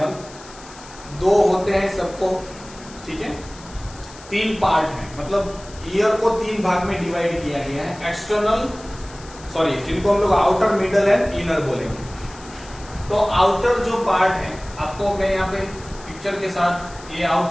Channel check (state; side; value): noise; left; hiss, 20 dB below the sound